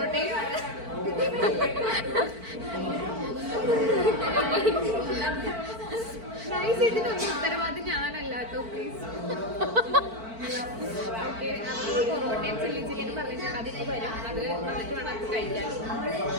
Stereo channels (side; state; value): left; late; 4.5 ms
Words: ഇതിനൊന്നും ഉത്തരവാദി ഞാനല്ല കേട്ടോ, പ്ലീസ്. ഓക്കെ, പൊറോട്ടയും ചില്ലി ചിക്കനും പറഞ്ഞിട്ടുണ്ട്. അതിന് വരും, അത് വന്നിട്ട് വേണം അത് കഴിക്കാൻ.